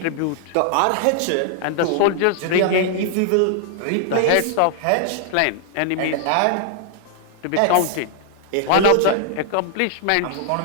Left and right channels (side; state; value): both; different; correlation 0.00